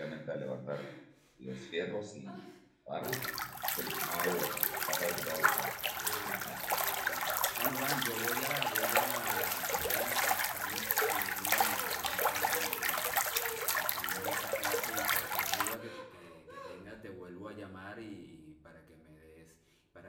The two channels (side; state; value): both; identical; correlation 1.00